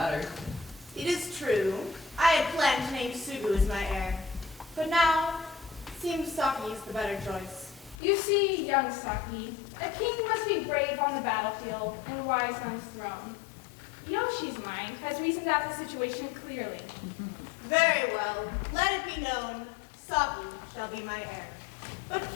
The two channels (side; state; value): right; drops out; at 8.0 s